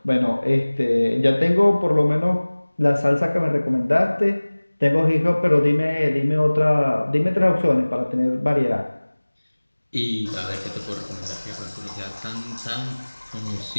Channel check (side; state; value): both; inverted; correlation -1.00